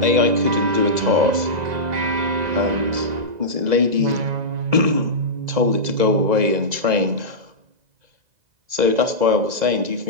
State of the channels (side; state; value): left; late; 2.0 ms